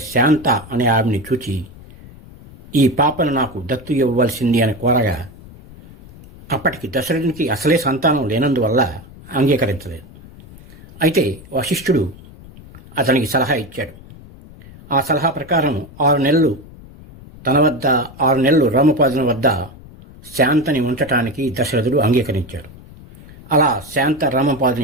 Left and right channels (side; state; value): left; noise; rumble, 20 dB below the sound